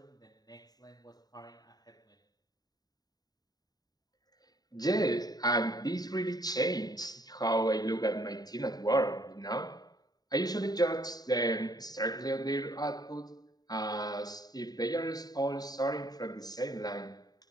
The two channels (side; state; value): right; late; 0.19 ms